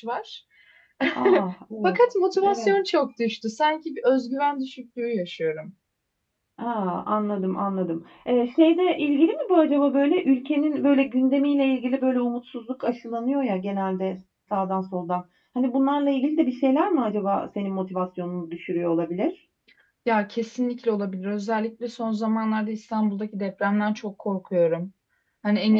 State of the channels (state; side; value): identical; both; correlation 1.00